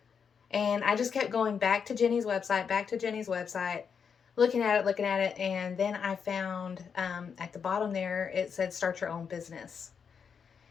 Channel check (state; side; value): quieter; right; 6.6 dB